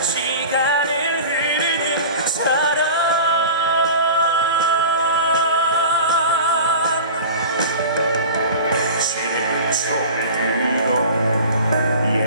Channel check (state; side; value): inverted; both; correlation -0.36